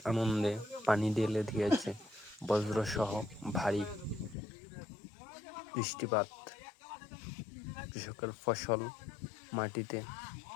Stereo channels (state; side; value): drops out; right; at 4.4 s